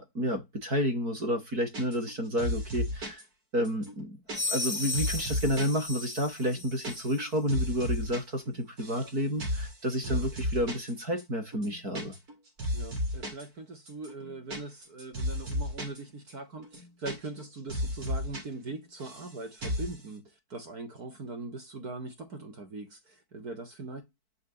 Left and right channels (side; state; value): left; late; 4.5 ms